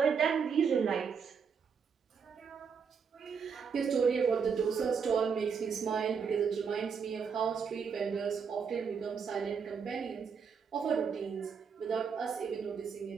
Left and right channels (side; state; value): left; quieter; 6.2 dB